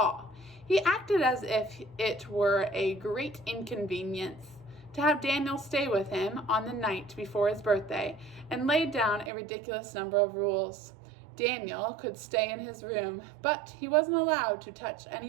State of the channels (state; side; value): drops out; left; at 9.3 s